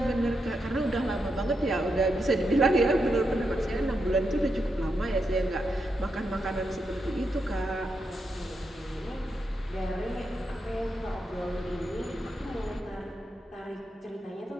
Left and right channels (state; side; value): normal; both; correlation 0.84